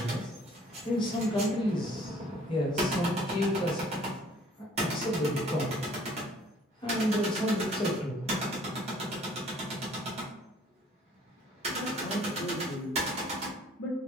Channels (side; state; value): both; normal; correlation 0.57